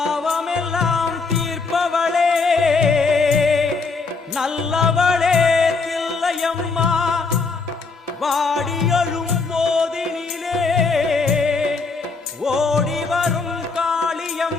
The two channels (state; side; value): quieter; right; 4.3 dB